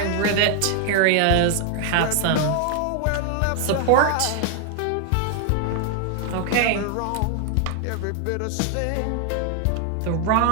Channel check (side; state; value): both; different; correlation 0.00